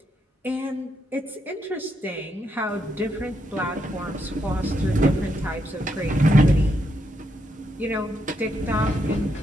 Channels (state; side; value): normal; both; correlation 0.79